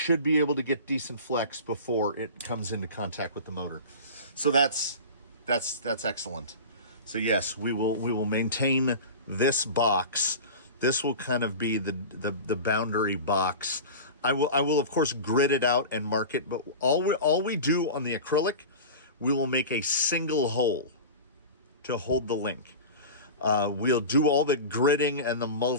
be able to get decent flex before it comes into contact with the motor. So that's excellent. So yes, we will maintain this box. This will kind of be the boundary box. I will of course grid it out and mark it, but all we do on the acrylic, we will make a single hole to hold the link. We'll do all the gridding and the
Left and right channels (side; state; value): both; inverted; correlation -0.31